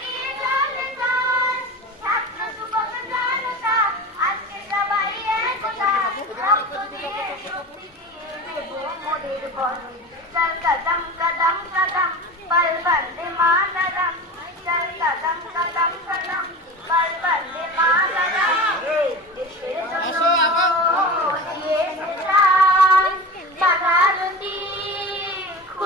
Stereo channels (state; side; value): normal; both; correlation 0.31